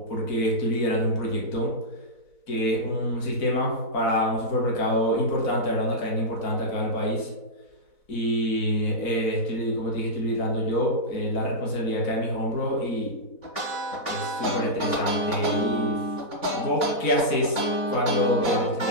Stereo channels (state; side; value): late; right; 4.0 ms